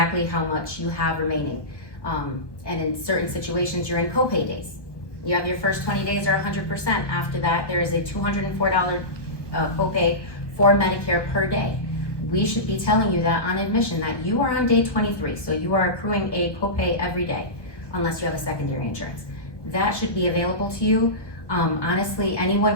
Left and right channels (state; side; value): late; right; 1.2 ms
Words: how much you have remaining. And in certain situations, you're in copay days. You have your first 20 days are 100%. After that, there is a $204 copay for Medicare per day. We should be telling you that on admission, that you are on day 23, so you are accruing a copay every day, unless you have a secondary insurance. That should be available to you. Honestly,